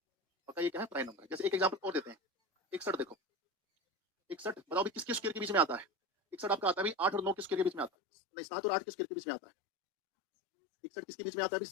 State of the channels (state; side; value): drops out; right; at 7.9 s